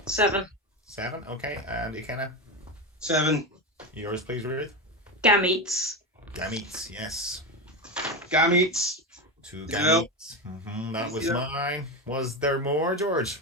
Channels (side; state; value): both; normal; correlation 0.17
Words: 7. 7. Okay. And Ikenna. 7. Yours, please, Ruth. Gametes. Gametes. Yes. Gametes. 2 Yep. gametes. That was Yep. mine. Was there more,